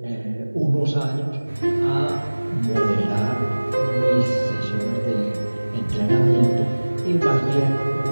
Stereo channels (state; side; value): inverted; both; correlation -1.00